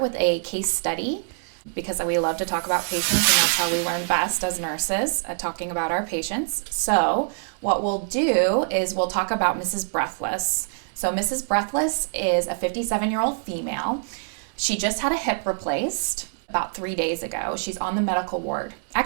a case study because we love to talk about patients and that's how we learn best as nurses, talking about our patients. So what we'll do is we'll talk about Mrs. Breathless. So Mrs. Breathless is a 57-year-old female. She just had a hip replaced about 3 days ago. She's on the medical ward.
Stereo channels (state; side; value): silent; left; digital silence